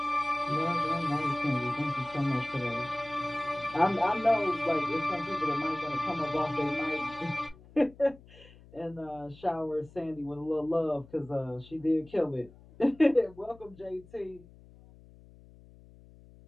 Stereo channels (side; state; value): left; noise; hum, 23 dB below the sound